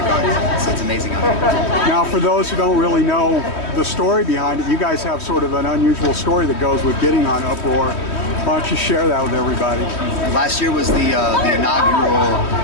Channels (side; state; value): right; late; 3.1 ms